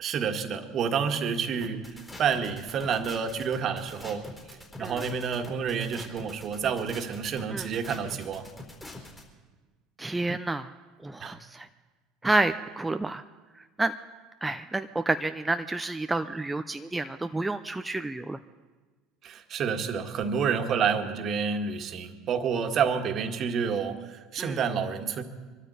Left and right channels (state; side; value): quieter; left; 4.7 dB